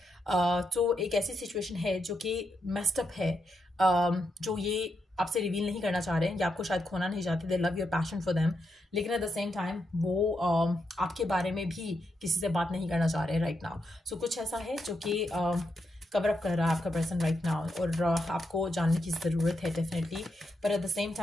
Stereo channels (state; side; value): normal; both; correlation 0.83